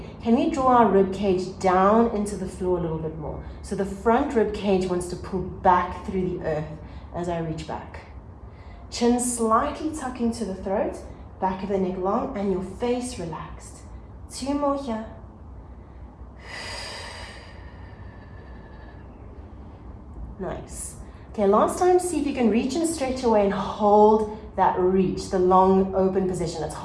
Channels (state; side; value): identical; both; correlation 1.00